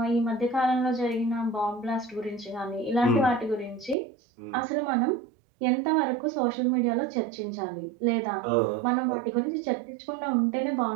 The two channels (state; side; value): drops out; left; at 4.0 s